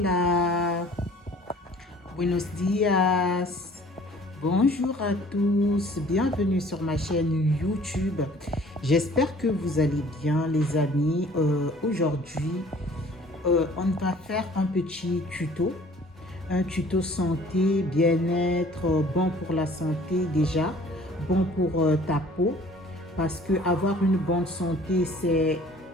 buenos días, bonjour à tous, bienvenue sur ma chaîne YouTube. J'espère que vous allez bien les amis. Aujourd'hui, on va faire un petit un tuto santé, bien-être, bon pour la santé déjà, bon pour ta peau, parce que avoir une bonne santé, c'est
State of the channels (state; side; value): normal; both; correlation 0.52